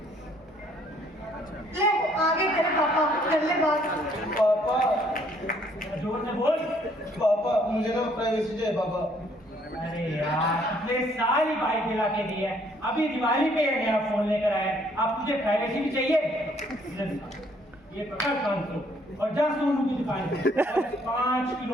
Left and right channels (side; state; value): both; normal; correlation 0.64